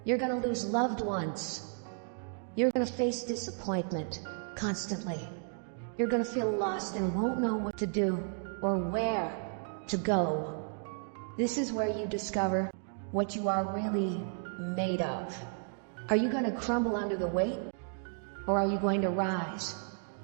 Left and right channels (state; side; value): silent; left; 56 dB below the other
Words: You're gonna lose loved ones. You're gonna face disappointment constantly. You're gonna feel lost and won't know what to do or where to go. This is where you discover what you are really made of. Are you going to crumble under the weight? Or are you going to rise,